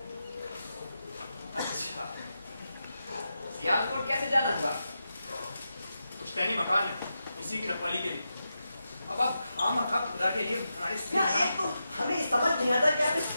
अच्छा, सियालकोट कैसे जाना हुआ? पुश्तैनी मकान है, इसी की रखवाली के लिए। अब आप खामखा खुदा के लिए हमारे एक तो हमें समझ नहीं आता कि आप इस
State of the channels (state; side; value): inverted; both; correlation -0.88